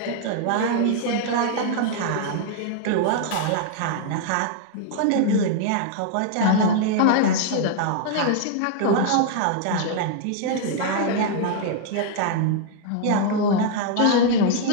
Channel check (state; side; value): different; both; correlation 0.00